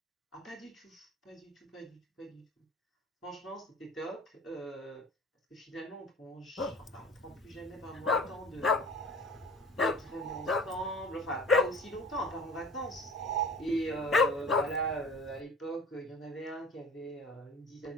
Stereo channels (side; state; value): both; normal; correlation 0.43